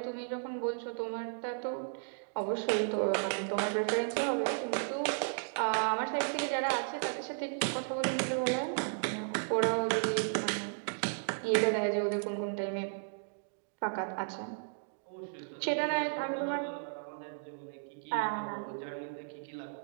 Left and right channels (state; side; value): silent; left; digital silence